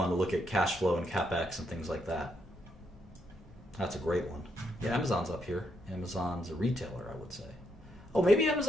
to look at cash flow and CapEx and things like that. That's a great one. Yeah, Amazon's up here. Amazon's a retailer, I would say. Oh, maybe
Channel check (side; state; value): both; normal; correlation 0.78